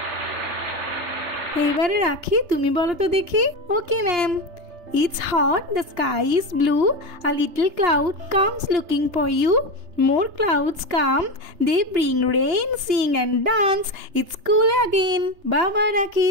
এইবারে রাখি, তুমি বলো তো দেখি। Okay ma'am. It's hot, the sky is blue, a little cloud comes looking for you, more clouds come, they bring rain, sing and dance, it's cool again. বাবা রাখি,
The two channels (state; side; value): late; left; 3.3 ms